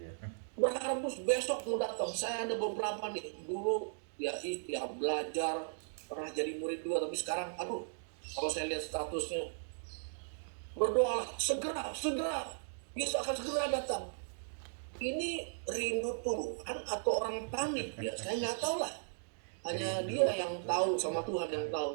berharap besok mau datang. Saya ada beberapa nih, dulu ya belajar, pernah jadi murid juga, tapi sekarang, aduh, kalau saya lihat statusnya, berdoalah, segera, Yesus akan segera datang. Ini rindu Tuhan atau orang panik ya, saya nggak tahu lah. Hanya dia yang tahu, sama Tuhan yang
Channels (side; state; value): left; silent; digital silence